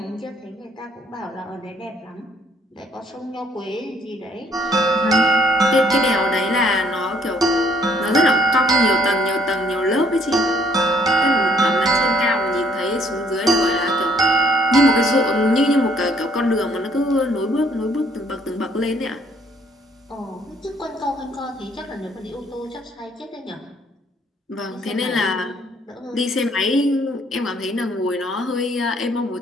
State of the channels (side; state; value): both; normal; correlation 0.63